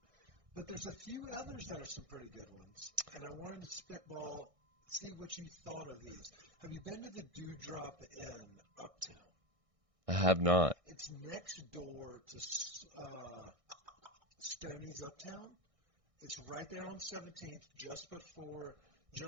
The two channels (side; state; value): left; late; 1.6 ms